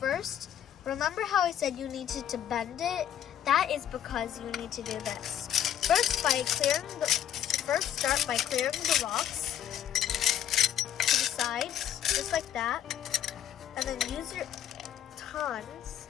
remember how I said you needed to bend it? That is because you need to do this. First, start by clearing the rocks to the sides, just like that, and then use your tongs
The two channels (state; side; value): quieter; right; 10.2 dB